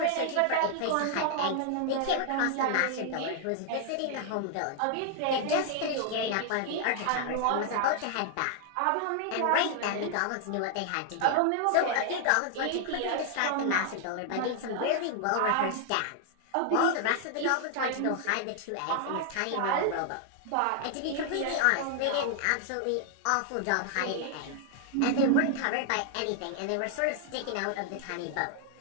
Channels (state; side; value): different; both; correlation 0.00